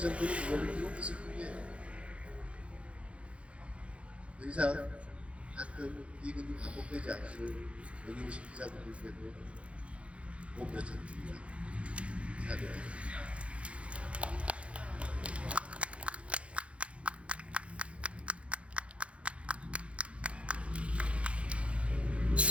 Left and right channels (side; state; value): left; late; 0.061 ms